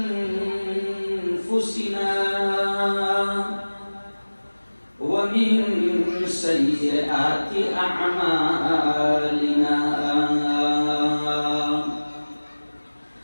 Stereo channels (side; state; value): both; inverted; correlation -1.00